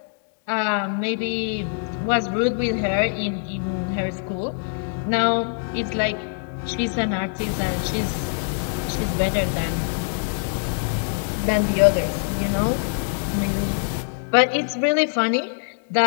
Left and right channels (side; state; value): right; silent; 63 dB below the other